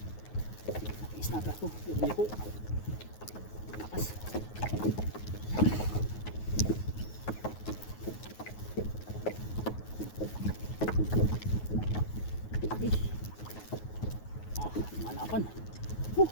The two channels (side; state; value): right; late; 9.4 ms